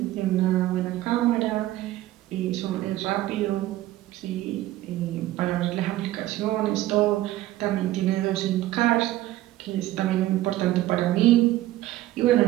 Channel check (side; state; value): left; quieter; 15.3 dB